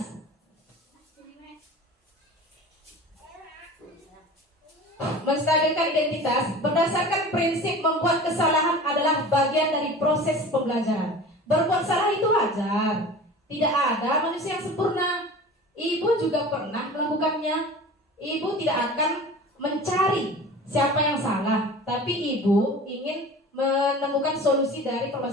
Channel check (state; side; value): normal; both; correlation 0.38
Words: Menstabilkan identitas berdasarkan prinsip membuat kesalahan adalah bagian dari proses pembelajaran. Berbuat salah itu wajar. Tidak ada manusia yang sempurna. Ibu juga pernah melakukannya. Ibu tidak akan mencari siapa yang salah, tapi ibu ingin menemukan solusi dari